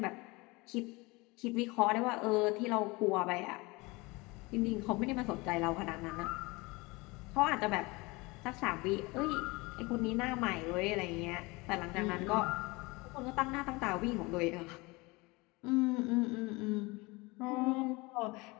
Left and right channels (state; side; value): quieter; right; 24.4 dB